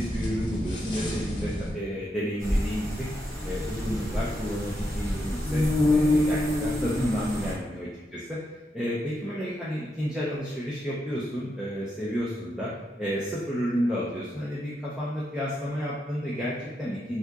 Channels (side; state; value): both; normal; correlation 0.82